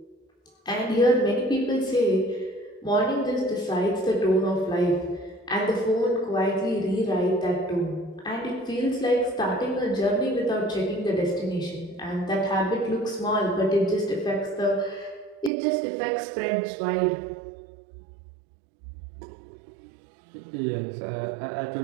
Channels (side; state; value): left; drops out; at 15.5 s